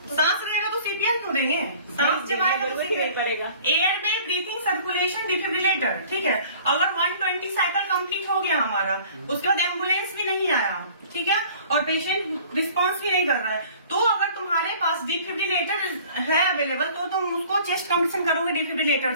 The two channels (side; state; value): both; inverted; correlation -0.49